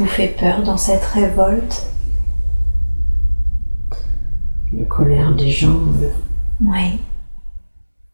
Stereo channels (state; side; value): inverted; both; correlation -1.00